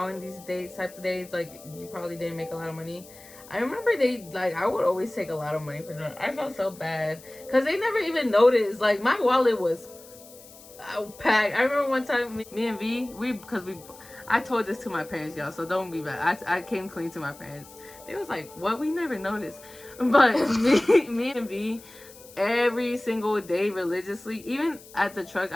in these days types of days, like you probably didn't make a lot of money. I remember I would always take a lot of money for them. I felt so bad because they never even noticed. Like my wallet was packed. I remember one time me and V, I told this to my parents, y'all, so don't be bad. I came clean to my parents. They was like, what? We never noticed. But me and V, every single day religiously, even at the truck,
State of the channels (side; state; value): left; noise; hiss, 20 dB below the sound